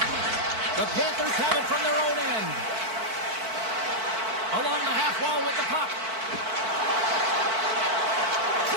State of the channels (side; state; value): left; late; 4.5 ms